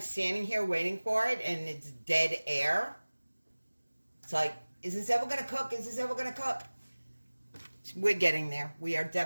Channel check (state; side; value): inverted; both; correlation -1.00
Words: standing here waiting for it and it's dead air, it's like, is this ever going to cook? Is this ever going to cook? We're getting there. We are